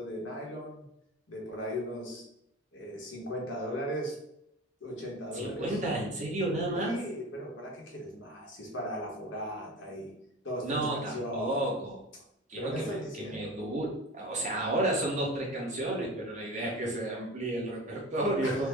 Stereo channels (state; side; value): normal; both; correlation 0.33